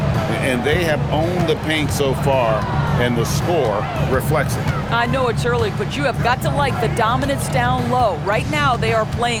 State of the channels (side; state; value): both; identical; correlation 1.00